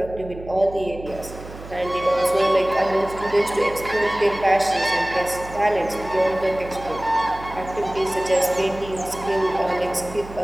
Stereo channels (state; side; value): noise; right; hum, 14 dB below the sound